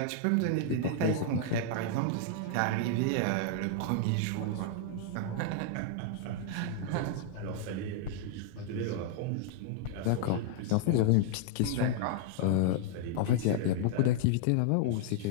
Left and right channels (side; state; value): both; different; correlation -0.01